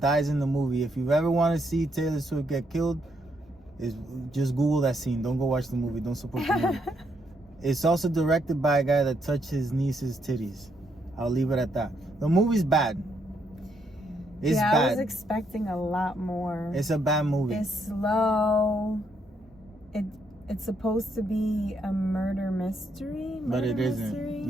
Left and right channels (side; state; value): both; normal; correlation 0.75